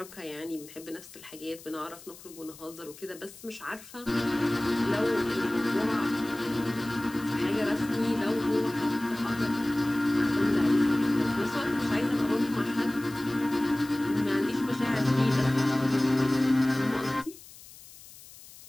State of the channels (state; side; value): noise; left; hiss, 19 dB below the sound